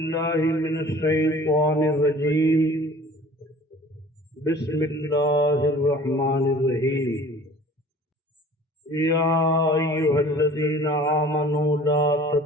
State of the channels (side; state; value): both; normal; correlation 0.47